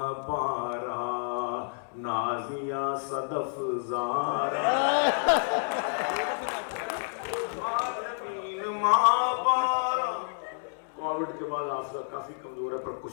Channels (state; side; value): silent; right; digital silence